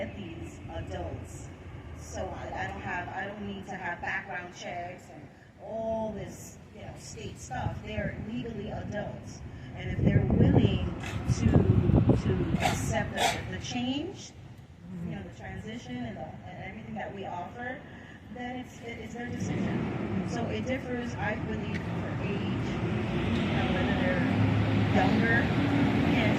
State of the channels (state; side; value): identical; both; correlation 1.00